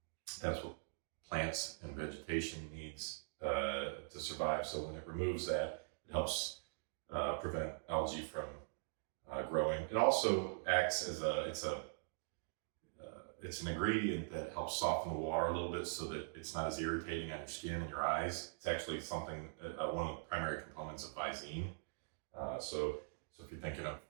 that's what plants and vegetation needs to survive. So when it removes that, it helps prevent algae from growing. It also acts as it's an ingredient that helps soften the water a little bit so that it's not as irritating on your skin and your eyes. It's actually something, one of the primary components of Visine. So if you're thinking of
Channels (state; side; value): silent; left; digital silence